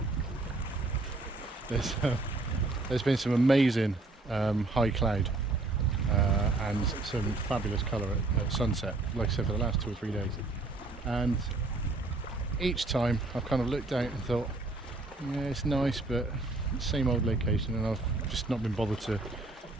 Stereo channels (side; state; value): left; quieter; 3.1 dB